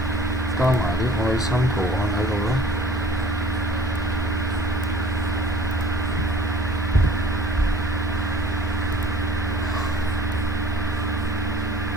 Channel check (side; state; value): both; normal; correlation 0.50